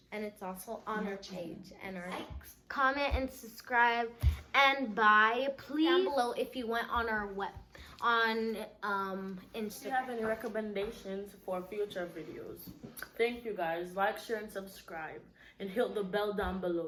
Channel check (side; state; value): both; identical; correlation 1.00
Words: And it's also on our page and our comment and subscribe and buy. Please down below if you went on our If you Instagram. have any recommendations for future videos, thank you guys. Like, share, and subscribe, and hit the bell down